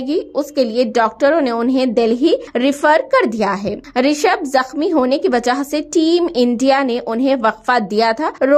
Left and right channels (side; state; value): both; identical; correlation 1.00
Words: उसके लिए डॉक्टरों ने उन्हें दिल्ली रिफर कर दिया है। ऋषभ जख्मी होने की वजह से टीम इंडिया ने उन्हें वक्फा दिया था।